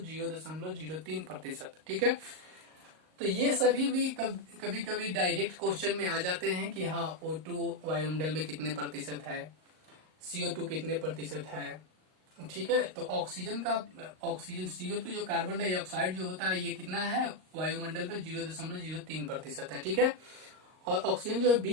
ठीक है, तो ये सभी भी कभी कभी डायरेक्ट क्वेश्चन में आ जाते हैं कि हाँ O2 वायुमंडल में कितने प्रतिशत है, CO2 कितने प्रतिशत है, ठीक है। तो ऑक्सीजन CO2 जो कार्बन डाइऑक्साइड जो होता है ये कितना है वायुमंडल में 0.03% है, ठीक है। और ऑक्सीजन जो है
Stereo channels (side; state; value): left; late; 38 ms